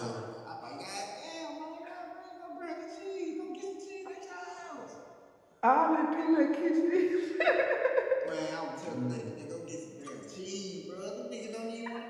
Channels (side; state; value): both; identical; correlation 1.00